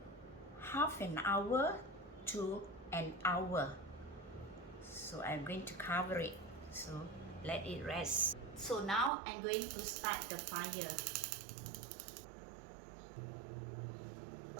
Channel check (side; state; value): left; drops out; at 9.1 s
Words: half an hour to an hour. So I'm going to cover it, so let it rest. So now I'm going to start the fire.